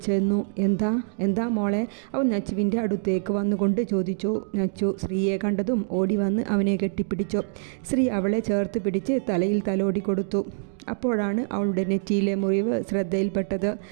എന്താ എന്താ മോളെ? അവൻ നച്ചുവിൻ്റെ അടുത്തേക്ക് വന്നുകൊണ്ട് ചോദിച്ചു. നച്ചു ശ്രീയെ കണ്ടതും ഓടി വന്ന് അവനെ കെട്ടിപ്പിടിച്ചു. ശ്രീ അവളെ ചേർത്ത് പിടിച്ച് തലയിൽ തലോടി കൊടുത്തു. അപ്പോഴാണ് അവളുടെ നെറ്റിയിലെ മുറിവ് ശ്രദ്ധയിൽപ്പെട്ടത്.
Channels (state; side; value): silent; left; digital silence